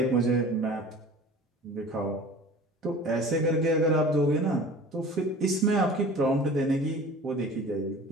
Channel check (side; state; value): both; normal; correlation 0.42